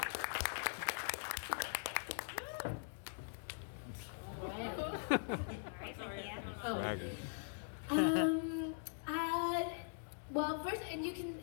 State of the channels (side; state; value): right; silent; digital silence